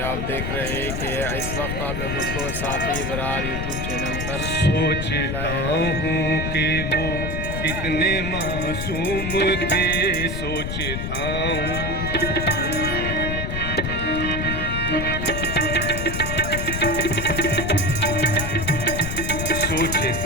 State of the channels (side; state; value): left; noise; rumble, 3 dB below the sound